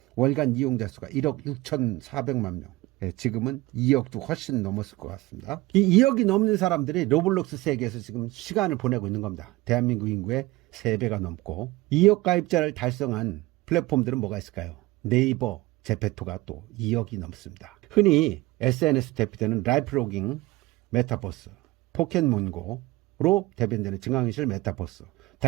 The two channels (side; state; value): left; quieter; 20.0 dB